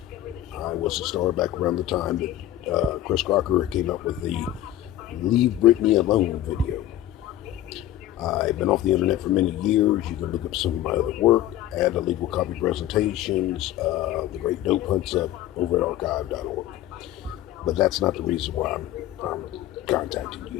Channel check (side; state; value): right; quieter; 13.3 dB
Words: I was a star back around the time that Chris Crocker came up with the Leave Britney Alone video. I've been off the internet for many years. You can look up some of my other work, add illegal copy presentations, the great dope hunts up over at archive.org. But that's not the reason why I'm contacting